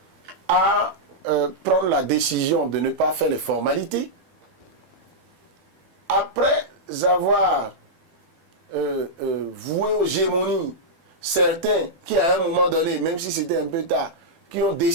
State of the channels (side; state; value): left; late; 12 ms